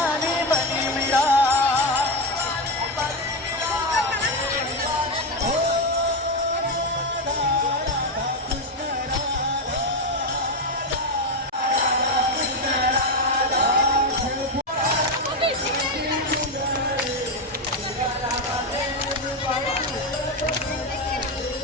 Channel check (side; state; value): both; normal; correlation 0.10